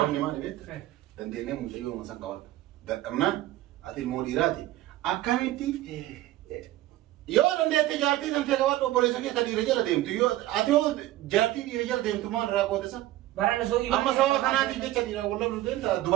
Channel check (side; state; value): left; quieter; 15.4 dB